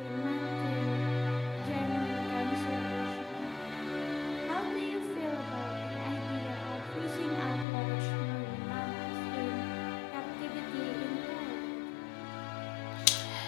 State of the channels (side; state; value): right; drops out; at 7.7 s